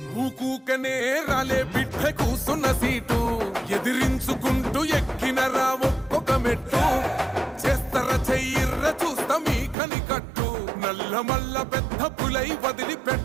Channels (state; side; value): drops out; left; at 9.8 s